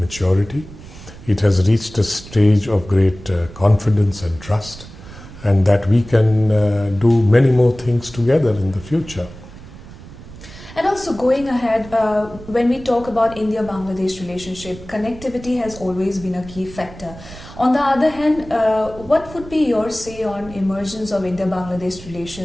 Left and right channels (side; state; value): right; noise; rumble, 17 dB below the sound